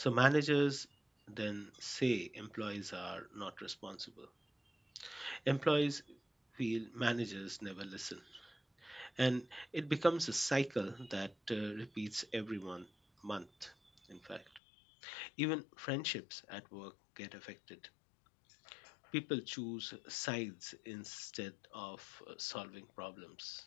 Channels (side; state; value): right; drops out; at 14.6 s